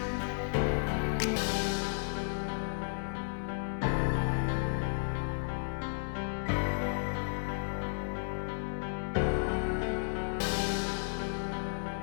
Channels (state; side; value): silent; right; 55 dB below the other